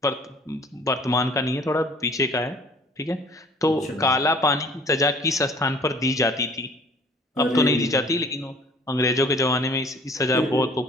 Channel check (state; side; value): normal; both; correlation 0.52